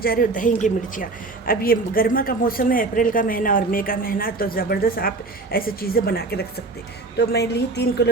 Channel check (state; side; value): quieter; left; 3.4 dB